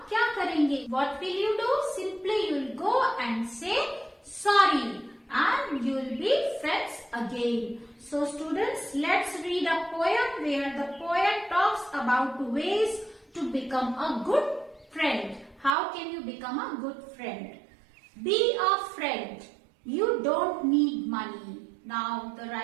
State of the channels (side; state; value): left; drops out; at 15.8 s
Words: क्या करेंगे? What will you do? Simply you will go and say sorry and you will be friends again. So students, let's read a poem where the poet talks about ways to become a good friend. How can you become a good friend? Be a friend. You don't need money. Now the